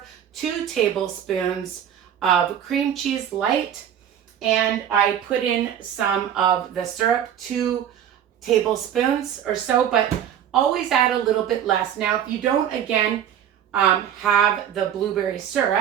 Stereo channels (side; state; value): left; quieter; 9.7 dB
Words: 2 tablespoons of cream cheese light, and I put in some of the syrup, 2 tablespoons or so, but always add a little bit less. Now, if you don't, again, have the blueberry